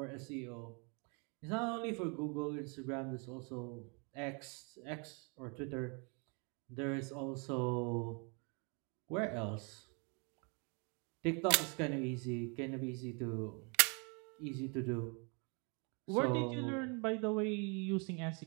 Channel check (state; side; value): quieter; left; 34.6 dB